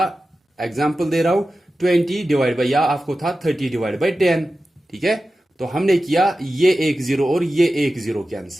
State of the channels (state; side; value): normal; both; correlation 0.93